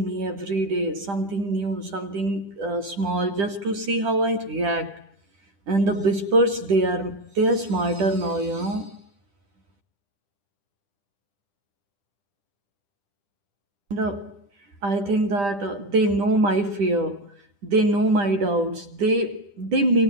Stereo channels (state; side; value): late; left; 10 ms